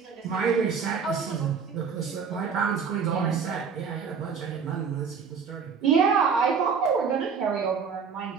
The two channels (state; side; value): quieter; left; 6.1 dB